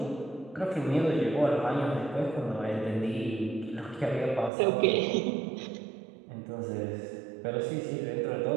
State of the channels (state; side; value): drops out; left; at 4.5 s